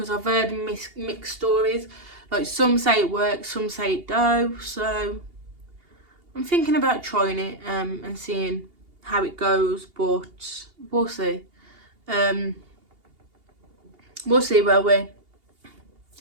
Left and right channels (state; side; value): late; left; 2.8 ms